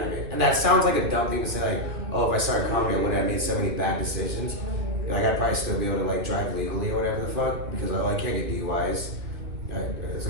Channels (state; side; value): late; left; 2.9 ms